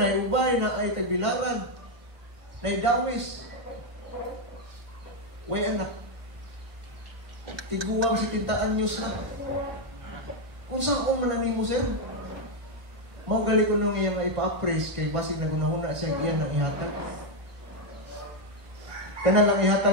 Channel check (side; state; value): left; late; 1.0 ms